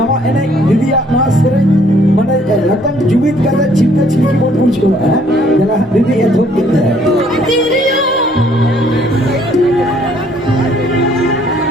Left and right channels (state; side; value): normal; both; correlation 0.63